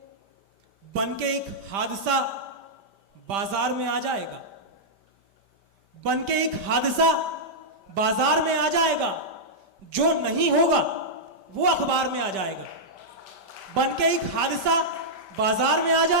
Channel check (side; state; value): left; late; 5.1 ms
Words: बन के एक हादसा बाजार में आ जाएगा, बन के एक हादसा बाजार में आ जाएगा, जो नहीं होगा वो अखबार में आ जाएगा। बन के एक हादसा बाजार में आ